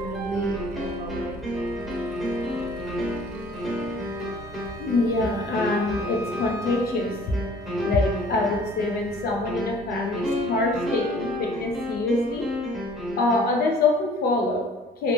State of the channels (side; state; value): both; normal; correlation 0.52